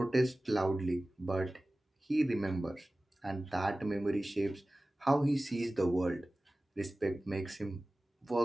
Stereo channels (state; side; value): normal; both; correlation 0.97